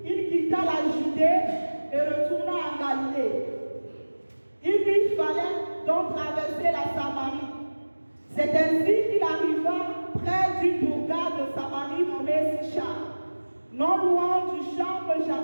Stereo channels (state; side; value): inverted; both; correlation -1.00